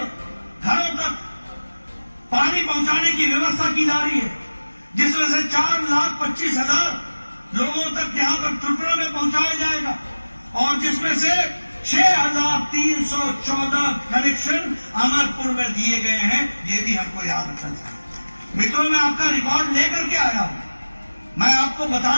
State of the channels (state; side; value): inverted; both; correlation -1.00